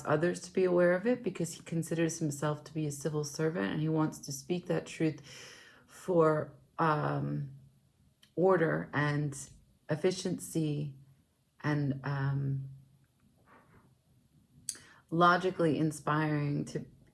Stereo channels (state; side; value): identical; both; correlation 1.00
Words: others to be aware of it because he considers himself to be a civil servant, and he wants to speak that truth for order and efficiency and logically inspiring to